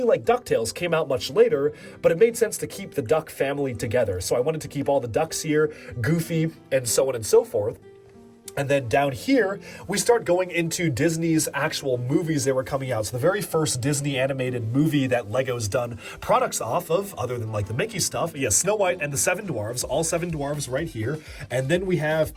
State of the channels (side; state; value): both; identical; correlation 1.00